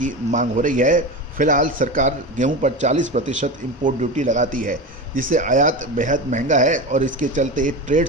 मांग हो रही है। फिलहाल सरकार गेहूं पर 40% इंपोर्ट ड्यूटी लगाती है, जिससे आयात बेहद महंगा है और इसके चलते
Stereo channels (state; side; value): normal; both; correlation 0.24